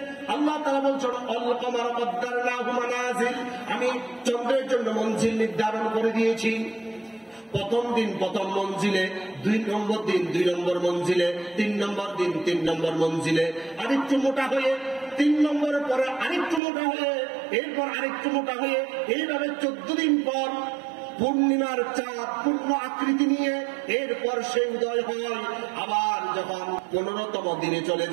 আল্লাহ তাআলা বলছেন আল কমার কদ্দারনাহু মানাজিল, আমি চন্দ্রের জন্য মঞ্জিল নির্ধারণ করে দিয়েছি। প্রথম দিন প্রথম মঞ্জিলে, 2 নম্বর দিন 2 নম্বর মঞ্জিলে, 3 নম্বর দিন 3 নম্বর মঞ্জিলে, আরেকটু মোটা হয়ে 3 নম্বরের পরে আরেকটু মোটা হয়ে, এরপর আরেকটু মোটা হয়ে, এইভাবে 14 দিন পর পূর্ণিমার চাঁদ পূর্ণ আকৃতি নিয়ে এরপর সে উদয় হয়। আবার যখন 15তম দিনে চলে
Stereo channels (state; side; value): drops out; left; at 16.6 s